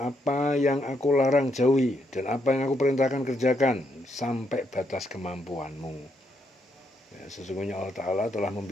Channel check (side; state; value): both; normal; correlation 0.77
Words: apa yang aku larang jauhi dan apa yang aku perintahkan kerjakan sampai batas kemampuanmu. Ya, sesungguhnya Allah Ta'ala telah